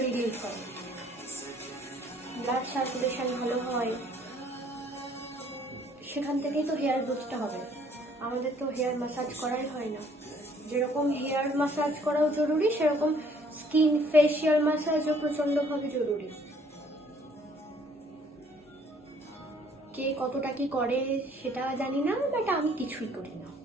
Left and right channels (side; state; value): both; normal; correlation 0.60